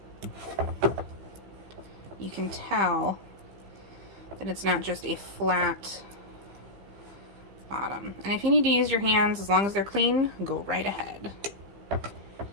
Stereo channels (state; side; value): late; left; 15 ms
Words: you can tell that it's not just a flat bottom. And if you need to use your hands, as long as they're clean, go right ahead.